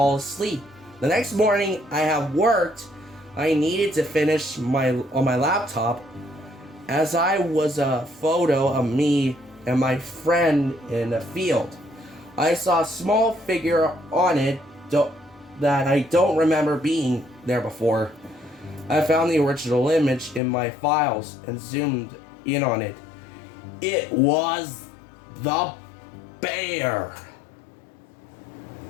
asleep. The next morning, I had worked. I needed to finish on my laptop, as I was a photo of me and my friend in a field. I saw a small figure on it that I don't remember being there before. I found the original image in my files and zoomed in on it. It was the bear.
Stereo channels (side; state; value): right; drops out; at 20.4 s